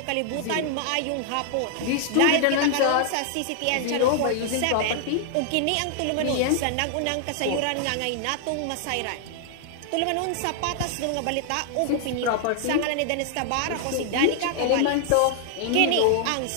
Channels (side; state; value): both; different; correlation -0.01